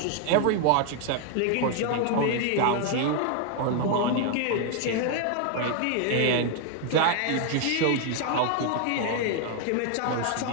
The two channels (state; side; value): different; both; correlation 0.00